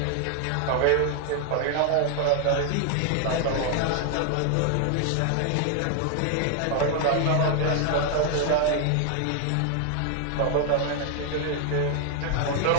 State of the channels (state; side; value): different; both; correlation 0.00